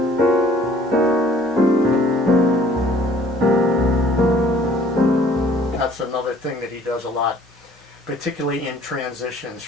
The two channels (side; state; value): both; normal; correlation 0.56